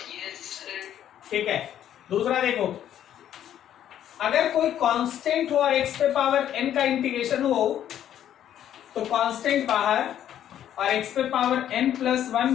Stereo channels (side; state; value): right; quieter; 10.7 dB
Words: ठीक है। दूसरा देखो, अगर कोई कांस्टेंट हो और x पे पावर n का इंटीग्रेशन हो तो कांस्टेंट बाहर और x पे power n plus